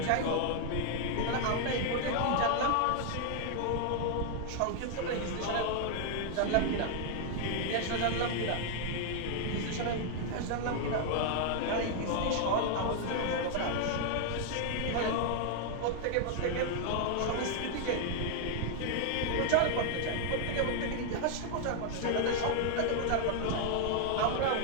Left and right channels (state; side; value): different; both; correlation 0.00